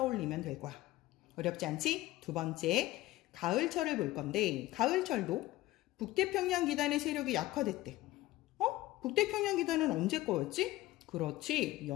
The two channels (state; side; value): quieter; right; 17.0 dB